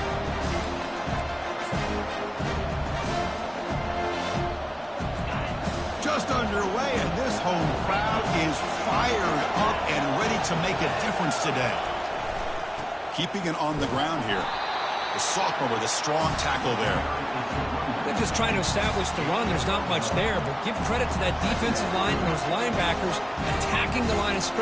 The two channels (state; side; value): identical; both; correlation 1.00